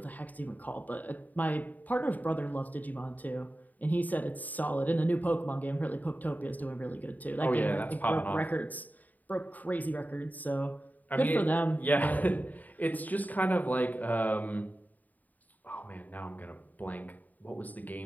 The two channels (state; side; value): late; right; 0.080 ms